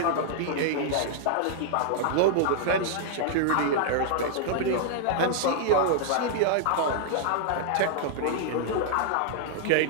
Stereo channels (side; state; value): both; different; correlation -0.01